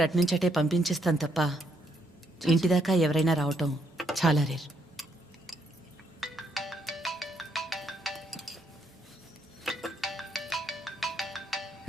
అట్నుంచటే పంపించేస్తాను తప్ప ఇంటిదాకా ఎవరైనా రావటం చాలా రేర్.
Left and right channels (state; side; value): normal; both; correlation 0.74